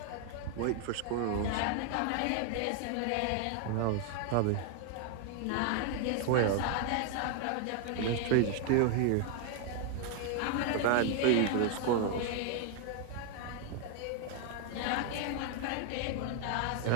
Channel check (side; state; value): both; different; correlation 0.00